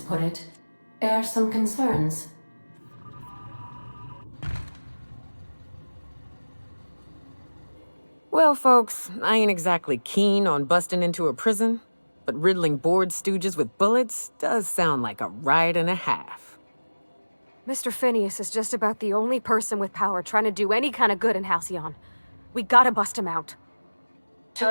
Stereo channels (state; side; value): inverted; both; correlation -1.00